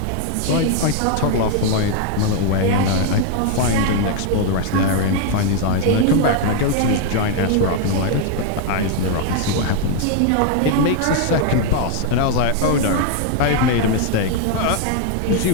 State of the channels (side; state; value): both; different; correlation 0.00